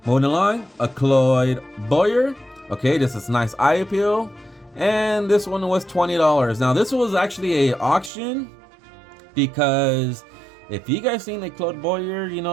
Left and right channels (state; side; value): drops out; left; at 8.1 s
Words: moving along, a Cloyd Boyer. Okay, this is nice eye appeal, and this one was $20. Now this was actually a auction, because if you guys seen the Cloyd Boyer, you